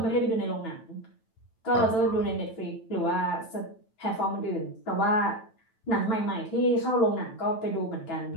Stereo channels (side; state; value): right; late; 9.1 ms